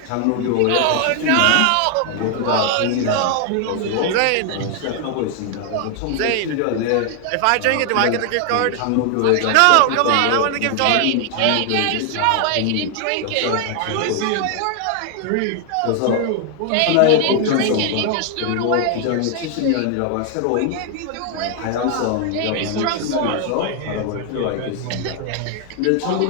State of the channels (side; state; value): both; different; correlation 0.00